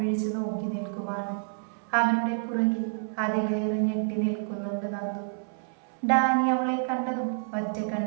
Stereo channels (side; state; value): left; silent; 59 dB below the other